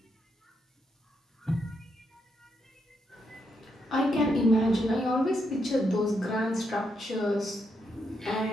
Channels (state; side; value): normal; both; correlation 0.80